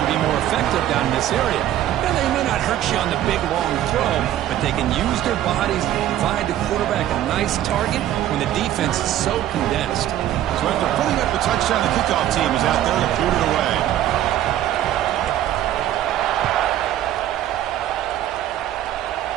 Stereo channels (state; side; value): quieter; left; 12.4 dB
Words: be more effective down in this area. And they may not hurt you on the big, long throw, but they can use their bodies to provide the quarterback a nice target when the defense is so condensed. So after putting up the touchdown, the kickoff team is out there to put it away.